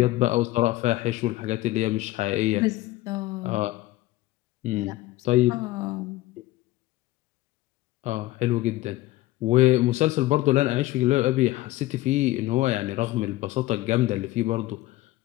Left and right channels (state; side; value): quieter; right; 17.3 dB